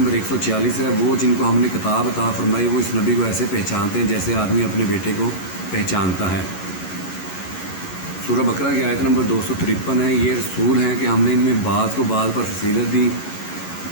146 ہے وہ جن کو ہم نے کتاب عطا فرمائی وہ اس نبی کو ایسے پہچانتے ہیں جیسے آدمی اپنے بیٹے کو پہچانتا ہے۔ سورہ بقرہ کی آیت نمبر 253 ہے یہ رسول ہیں کہ ہم نے ان میں بعض کو بعض پر فضیلت دی،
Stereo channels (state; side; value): late; right; 11 ms